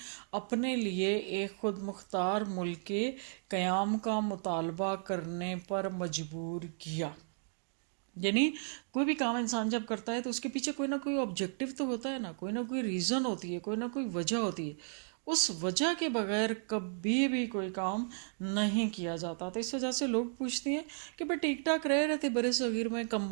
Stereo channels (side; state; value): left; silent; digital silence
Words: اپنے لیے ایک خود مختار ملک کے قیام کا مطالبہ کرنے پر مجبور کیا۔ یعنی کوئی بھی کام انسان جب کرتا ہے تو اس کے پیچھے کوئی نہ کوئی آبجیکٹو تو ہوتا ہے نا، کوئی نہ کوئی ریزن ہوتی ہے، کوئی نہ کوئی وجہ ہوتی ہے۔ اس وجہ کے بغیر کبھی بھی کوئی کام نہیں کیا جاتا۔ تو اس وجہ سے لوگ پوچھتے ہیں کہ بھائی ٹھیک ٹھاک رہ رہے تھے برِ صغیر میں،